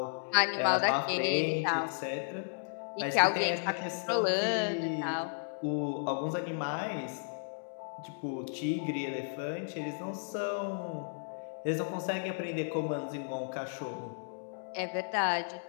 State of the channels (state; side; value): silent; right; digital silence